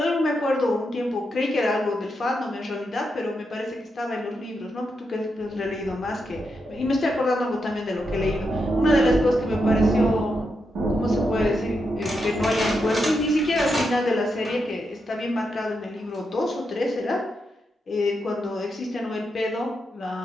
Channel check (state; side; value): normal; both; correlation 0.84